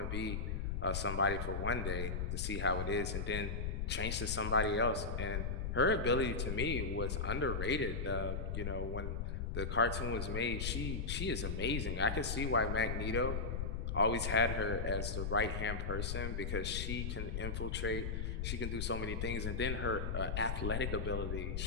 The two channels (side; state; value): left; noise; rumble, 1 dB below the sound